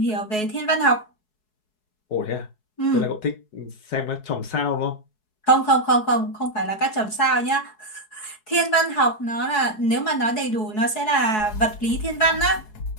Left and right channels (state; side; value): late; right; 4.7 ms